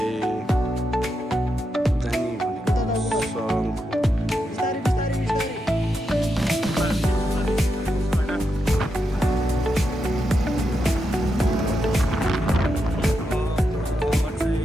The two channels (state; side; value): normal; both; correlation 0.85